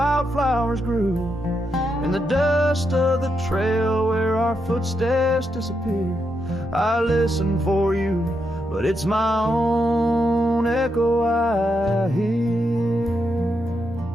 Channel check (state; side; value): normal; both; correlation 0.82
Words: grew. In the dust of the trail where our footsteps disappear, I listen for you, but it's my own echo I hear.